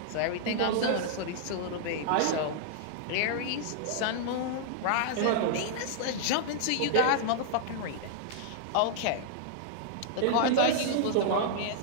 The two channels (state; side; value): different; both; correlation -0.01